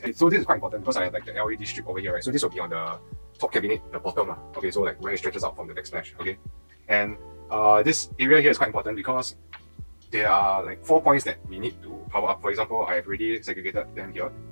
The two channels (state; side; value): inverted; both; correlation -1.00